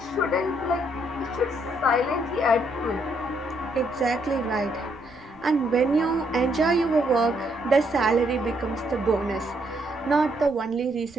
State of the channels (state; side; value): noise; right; rumble, 27 dB below the sound